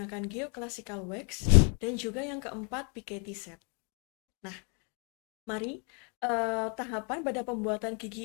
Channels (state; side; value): quieter; right; 39.5 dB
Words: geoclassical wax dan juga yang keempat Piketty set. Nah, mari tahapan pada pembuatan